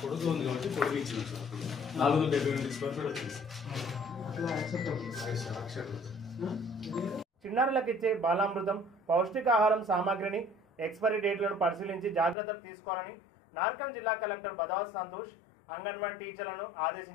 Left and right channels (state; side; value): drops out; right; at 12.4 s